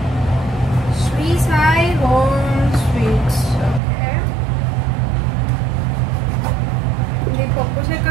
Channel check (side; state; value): left; drops out; at 3.8 s